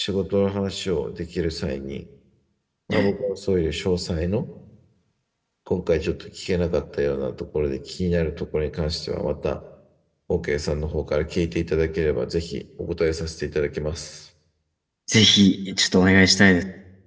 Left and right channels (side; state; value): both; identical; correlation 1.00